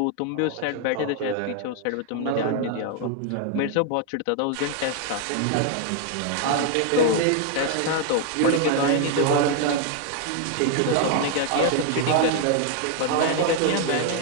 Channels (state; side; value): different; both; correlation 0.00